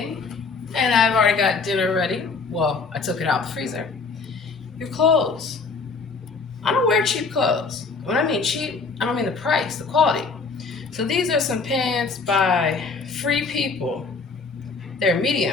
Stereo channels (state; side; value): quieter; right; 4.5 dB